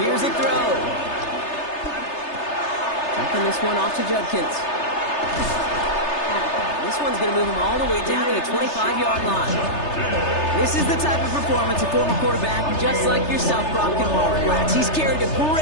Here's a 40-yard throw. line. Dumping this one off to Judkins. This one's going to move him all the way down to the 25-yard line. This is the type of performance a former quarterback just like yourself, Brock, can marvel at. He's carried a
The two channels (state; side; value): late; right; 3.3 ms